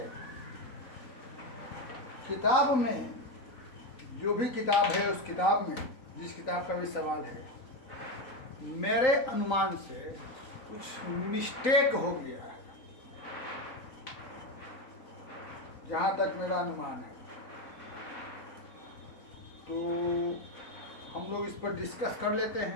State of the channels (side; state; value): right; late; 3.9 ms